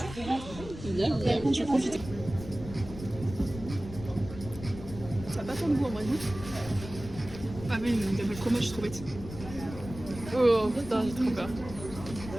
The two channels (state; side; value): noise; left; rumble, 12 dB below the sound